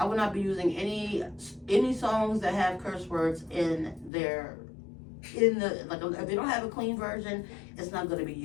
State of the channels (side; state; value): right; drops out; at 4.1 s